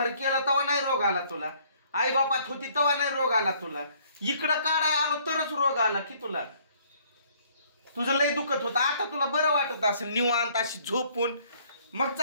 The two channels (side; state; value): both; inverted; correlation -0.61